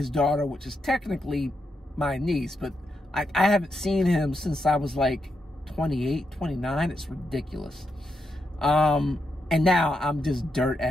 daughter, which is technically my niece, but I haven't seen him since I was like 28, 29. It's ridiculous. And now I'm just dirt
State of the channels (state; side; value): normal; both; correlation 0.83